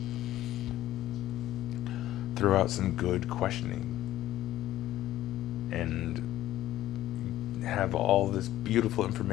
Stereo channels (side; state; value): right; quieter; 14.1 dB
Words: throw out some good questioning and have all this beautiful